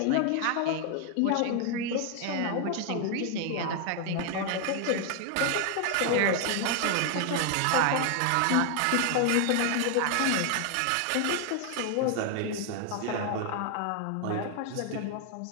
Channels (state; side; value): different; both; correlation 0.00